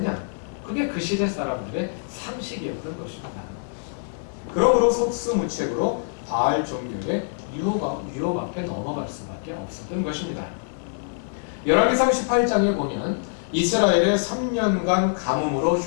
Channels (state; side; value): silent; right; digital silence